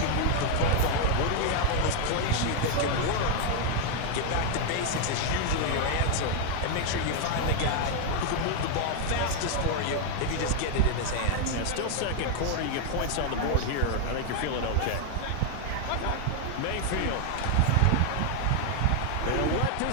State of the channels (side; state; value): both; different; correlation 0.00